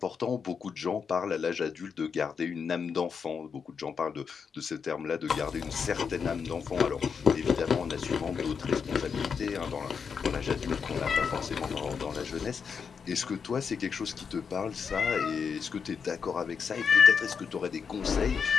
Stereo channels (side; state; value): right; quieter; 6.2 dB